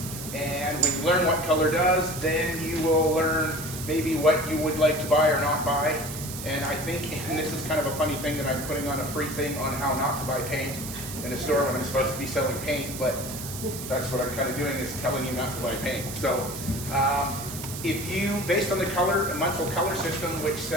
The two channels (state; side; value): noise; right; hiss, 9 dB below the sound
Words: And when you learn what color does, then you will learn maybe what you would like to buy or not buy. And I think, and this is kind of a funny thing that I'm putting on a free thing on how not to buy paint in a store when I'm supposed to be selling paint, but that's what I'm kind of doing, is telling you not to buy paint. So if you, based on the color, Munsell color system, which